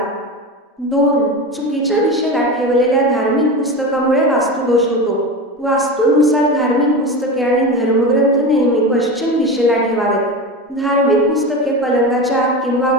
2. चुकीच्या दिशेला ठेवलेल्या धार्मिक पुस्तकामुळे वास्तुदोष होतो. वास्तूनुसार धार्मिक पुस्तके आणि धर्मग्रंथ नेहमी पश्चिम दिशेला ठेवावेत. धार्मिक पुस्तके पलंगाच्या आत किंवा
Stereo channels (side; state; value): both; normal; correlation 0.25